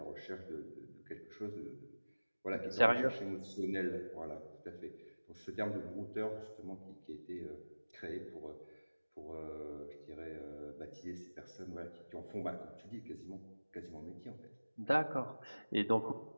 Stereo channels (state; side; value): inverted; both; correlation -1.00